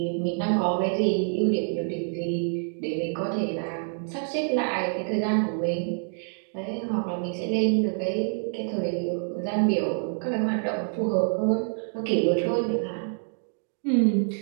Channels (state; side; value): silent; left; 57 dB below the other